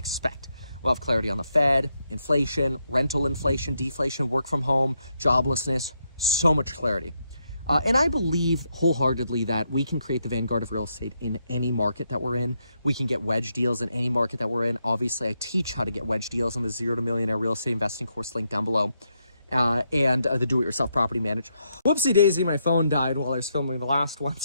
We'll have clarity on the Fed, inflation, rental inflation, deflation, work from home, joblessness, so much clarity. And I believe wholeheartedly that we can create the vanguard of real estate in any market that we're in. We can get wedge deals in any market that we're in. Obviously, I teach how to get wedge deals on the 0 to Millionaire Real Estate Investing course link down below. And the do-it-yourself property manager. Whoopsie daisy, my phone died while I was filming the last one,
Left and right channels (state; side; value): inverted; both; correlation -0.80